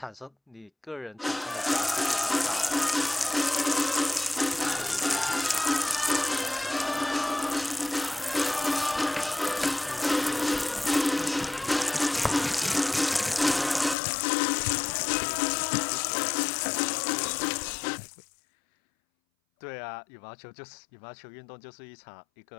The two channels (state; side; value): drops out; right; at 14.0 s